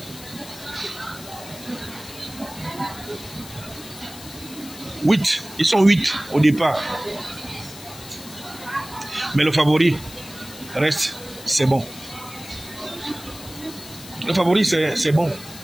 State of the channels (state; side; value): noise; left; hiss, 16 dB below the sound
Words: Ils sont 8 au départ. Mais le favori reste, c'est bon. Le favori, c'est bon.